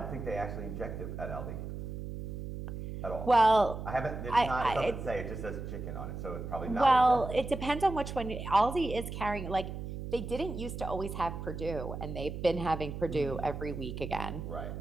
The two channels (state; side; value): noise; right; hum, 7 dB below the sound